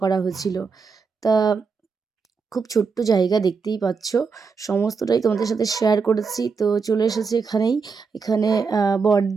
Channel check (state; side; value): quieter; left; 5.1 dB